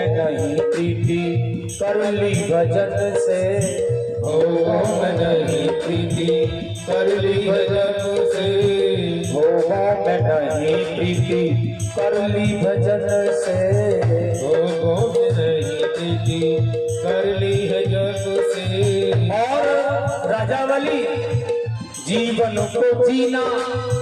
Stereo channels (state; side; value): identical; both; correlation 1.00